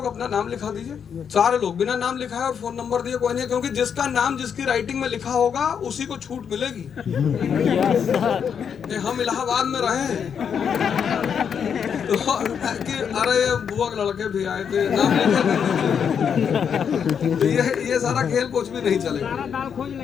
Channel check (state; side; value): quieter; right; 7.4 dB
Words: अपना नाम लिखा दीजिए, सारे लोग बिना नाम लिखाए और फोन नंबर दिए कोई नहीं, क्योंकि जिसका नाम जिसकी राइटिंग में लिखा होगा उसी को छूट मिलेगी। हम इलाहाबाद में रहे हैं तो कि अरे बुआ के लड़के भी आए थे, नाम लिखे तो ये सारा खेल कुछ भी नहीं चलेगा।